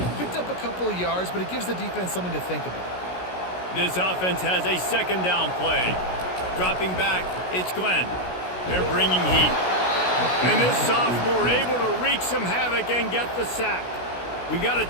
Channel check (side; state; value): right; late; 16 ms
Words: picked up a couple of yards, but it gives the defense something to think about. This offense has a 2nd down play. Dropping back, it's Glenn. They're bringing heat. And this sophomore able to wreak some havoc and get the sack. We've got a